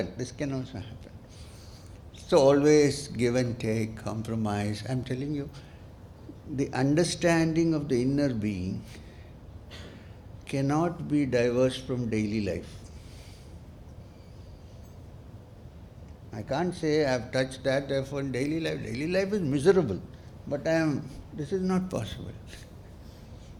This can also happen. So always give and take, compromise. I'm telling you, the understanding of the inner being cannot be diverse from daily life. I can't say I have touched that, therefore in daily life is miserable. But this is not possible.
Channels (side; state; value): both; identical; correlation 1.00